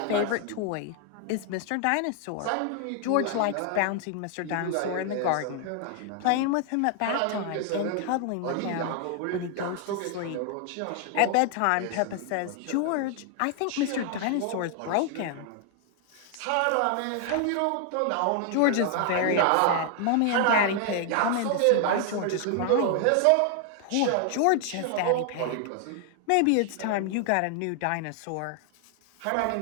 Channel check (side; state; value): both; different; correlation 0.00